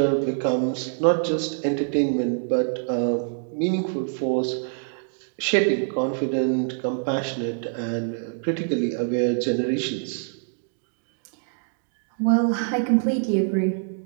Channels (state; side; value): silent; left; digital silence